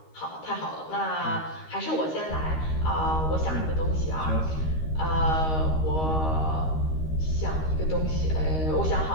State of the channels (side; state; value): right; late; 13 ms